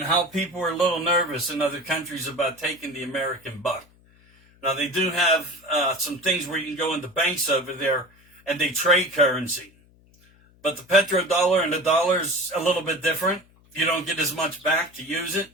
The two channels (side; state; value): left; noise; hum, 30 dB below the sound